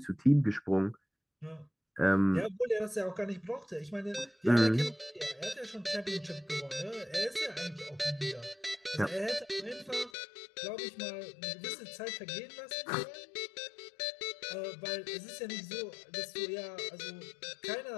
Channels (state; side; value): drops out; right; at 10.1 s